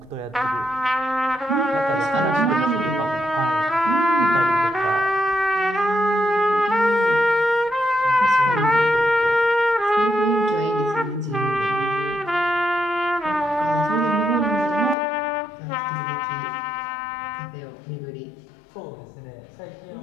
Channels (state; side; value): drops out; right; at 15.0 s